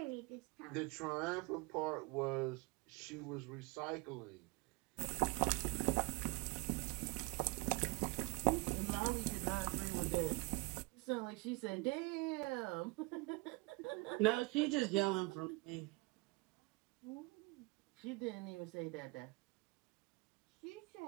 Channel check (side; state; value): left; quieter; 26.9 dB